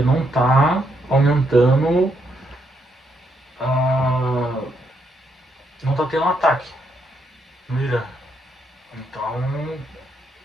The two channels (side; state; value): both; normal; correlation 0.76